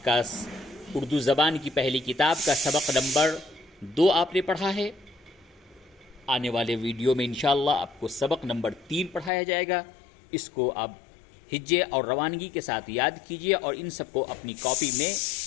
کا اردو زبان کی پہلی کتاب کا سبق نمبر 2 آپ نے پڑھا ہے۔ آنے والے ویڈیو میں انشاءاللہ آپ کو سبق نمبر 3 پڑھایا جائے گا۔ اس کو آپ ہجے اور روانگی کے ساتھ یاد کیجیے اور ان سب کو اپنی کاپی میں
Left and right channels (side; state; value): right; drops out; at 9.3 s